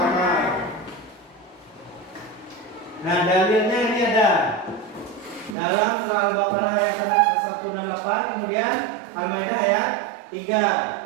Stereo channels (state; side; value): drops out; left; at 5.6 s